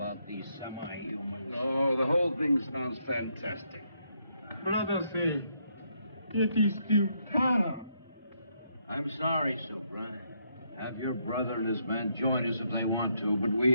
these semi-humans. Oh, the whole thing sounds fantastic. Brother say, Yeti steal Tara. I'm sorry, Subra. Have your brother and his men join us if they want to, but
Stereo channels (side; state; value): both; inverted; correlation -0.76